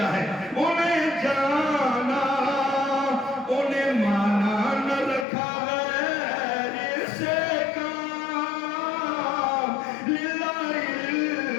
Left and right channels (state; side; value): drops out; right; at 5.2 s